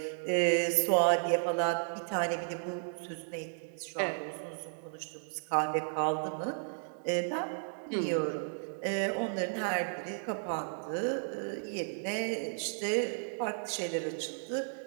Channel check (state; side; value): silent; left; digital silence